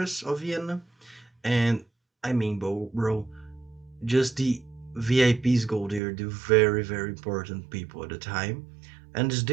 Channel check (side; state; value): left; drops out; at 6.0 s